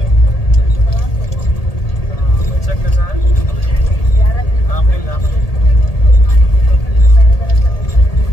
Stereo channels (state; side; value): late; right; 1.8 ms